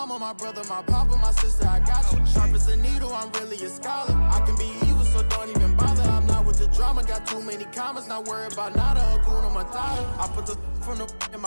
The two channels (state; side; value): inverted; both; correlation -1.00